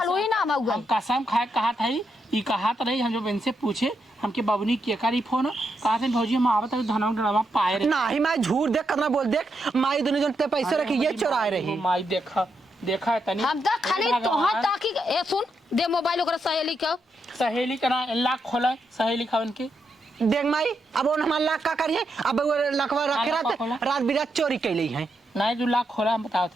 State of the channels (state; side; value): normal; both; correlation 0.82